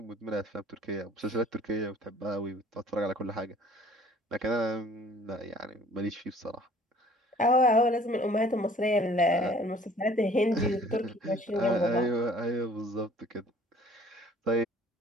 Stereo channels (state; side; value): normal; both; correlation 0.53